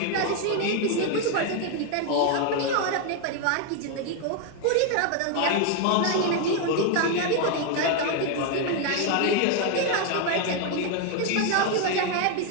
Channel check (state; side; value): different; both; correlation 0.01